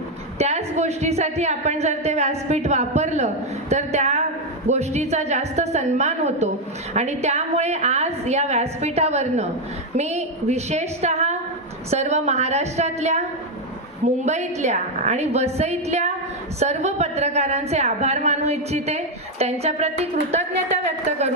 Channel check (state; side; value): normal; both; correlation 0.04